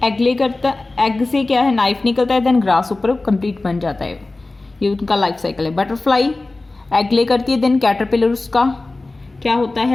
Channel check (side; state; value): right; quieter; 3.1 dB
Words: egg lay करता, एग से क्या है? नाइफ निकलता है, देन ग्रास होपर कंप्लीट बन जाता है. ये उनका लाइफ साइकिल है. बटरफ्लाई एग ले करती है, देन कैटरपिलर उसका क्या होता